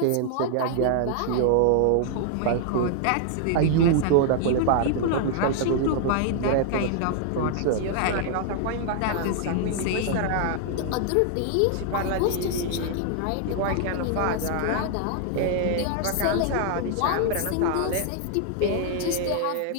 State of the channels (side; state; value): both; different; correlation 0.00